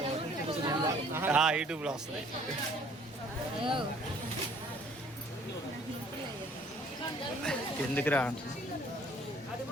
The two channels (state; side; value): normal; both; correlation 0.57